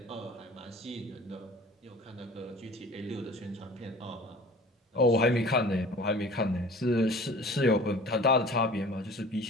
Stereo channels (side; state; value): both; normal; correlation 0.44